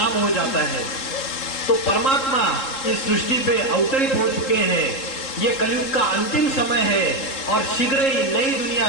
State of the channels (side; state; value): right; late; 3.7 ms